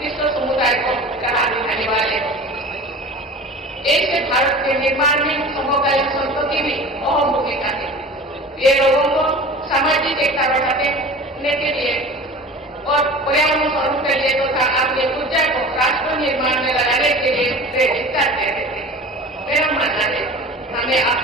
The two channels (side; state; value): both; normal; correlation 0.38